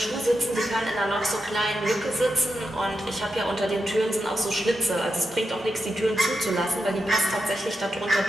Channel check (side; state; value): both; normal; correlation 0.87